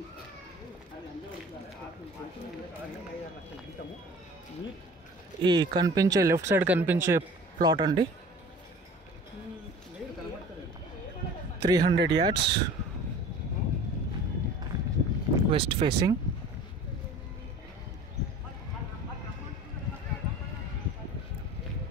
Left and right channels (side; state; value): both; normal; correlation 0.43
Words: ఈ కనిపించే లెఫ్ట్ సైడ్ కనిపించే ప్లాట్ అండి, 300 yards, west facing.